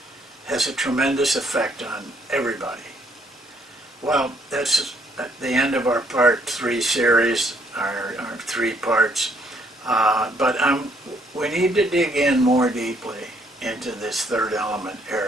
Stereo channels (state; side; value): normal; both; correlation 0.67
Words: Has a tremendous effect on everybody. Well, that's at the end of our part 3 series, our 3 parts. But we need to dig in more deeply into this third element